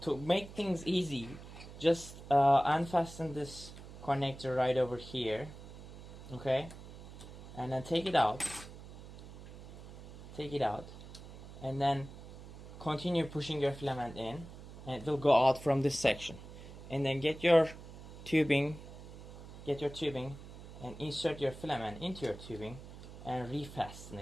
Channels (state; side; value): noise; right; hum, 14 dB below the sound